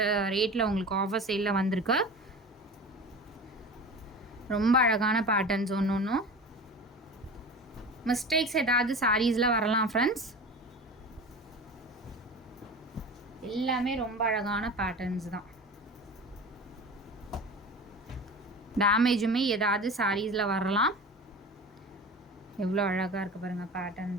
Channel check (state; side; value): normal; both; correlation 0.33